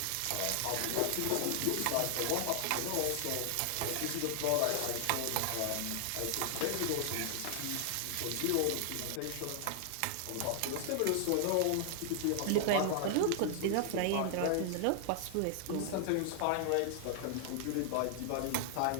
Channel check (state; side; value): different; both; correlation 0.00